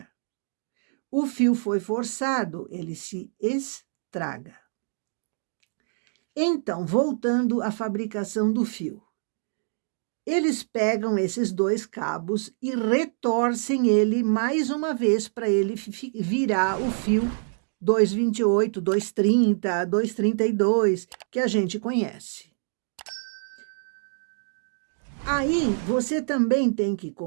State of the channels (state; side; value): silent; left; digital silence